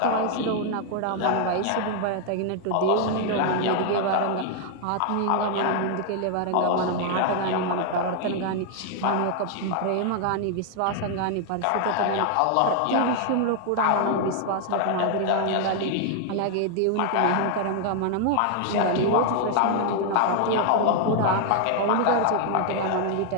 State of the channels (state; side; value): different; both; correlation 0.00